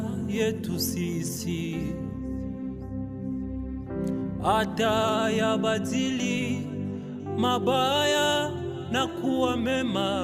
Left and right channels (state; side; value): identical; both; correlation 1.00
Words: yetu sisi, hata yabadili mabaya na kuwa